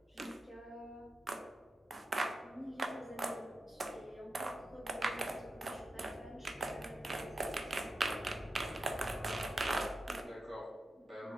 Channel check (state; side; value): normal; both; correlation 0.90